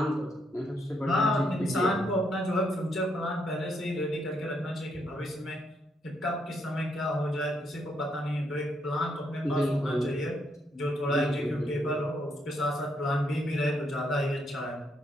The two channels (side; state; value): both; normal; correlation 0.75